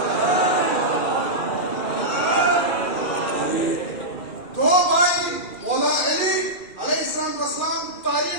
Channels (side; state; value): right; late; 2.4 ms